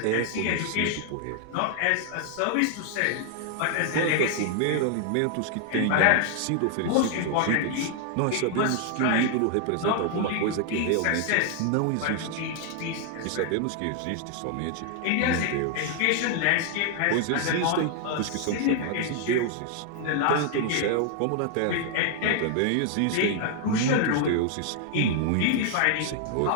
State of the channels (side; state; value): both; different; correlation 0.00